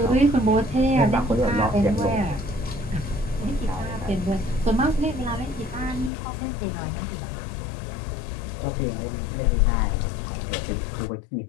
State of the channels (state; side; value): drops out; right; at 6.1 s